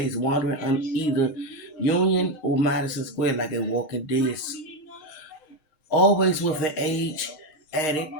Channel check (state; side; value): late; right; 6.5 ms